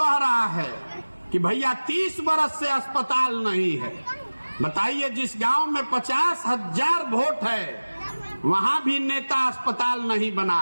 रहा है कि भैया 30 बरस से अस्पताल नहीं है। बताइए, जिस गांव में 50,000 वोट है वहां भी नेता अस्पताल नहीं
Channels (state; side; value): inverted; both; correlation -1.00